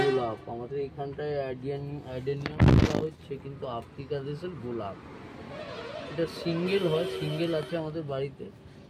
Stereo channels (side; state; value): both; identical; correlation 1.00